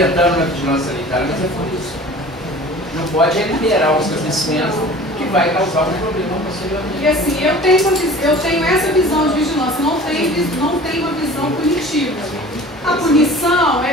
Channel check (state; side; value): normal; both; correlation 0.43